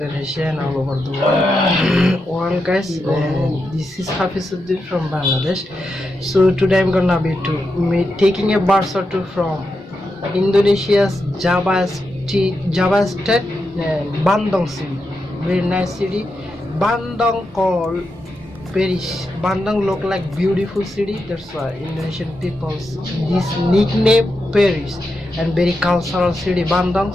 and all over the world, guys. This is Hafiz from Bangladesh. So today I'm gonna be taking a bus or two from Indonesia's Java State, Bandung city. Very nice city. Bandung called Paris. Bandung look like beautiful city. That's why Indonesian people this nickname Paris. And very cultural city Bandung.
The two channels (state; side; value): normal; both; correlation 0.86